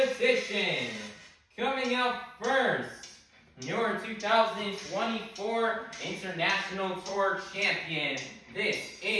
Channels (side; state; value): both; identical; correlation 1.00